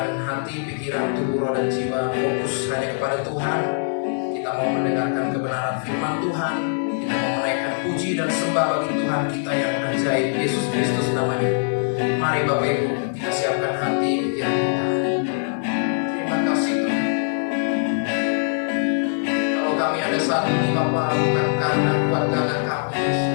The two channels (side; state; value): right; silent; digital silence